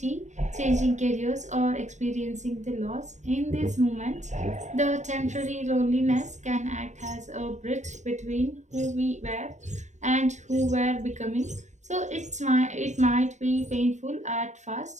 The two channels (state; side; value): late; left; 0.34 ms